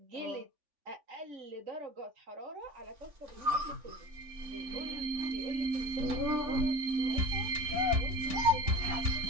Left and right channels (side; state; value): left; late; 3.5 ms